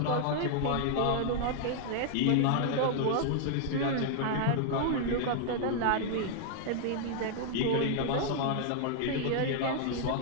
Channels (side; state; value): both; different; correlation -0.01